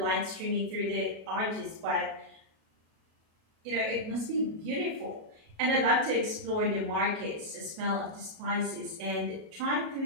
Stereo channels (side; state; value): left; late; 37 ms